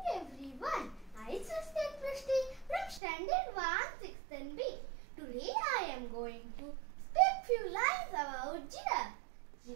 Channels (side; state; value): left; drops out; at 3.0 s